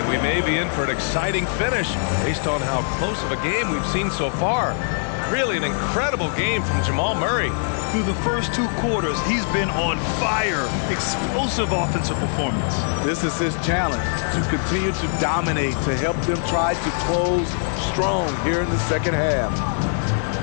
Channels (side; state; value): right; silent; digital silence